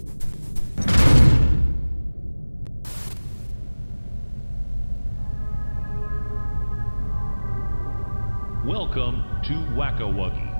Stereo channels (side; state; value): both; inverted; correlation -1.00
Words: Welcome to Wacko Wuggy.